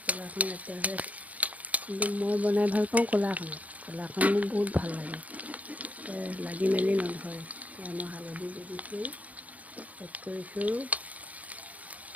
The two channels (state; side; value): late; left; 0.072 ms